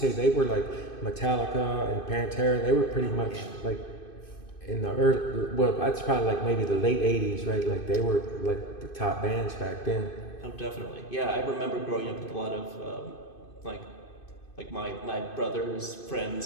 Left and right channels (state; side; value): late; right; 2.5 ms